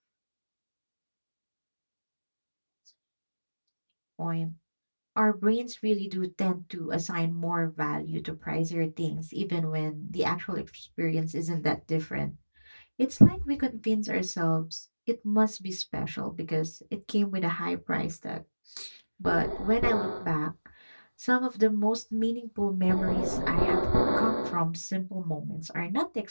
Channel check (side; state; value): both; inverted; correlation -1.00